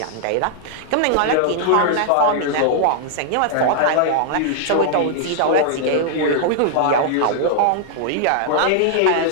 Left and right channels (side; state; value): both; different; correlation -0.01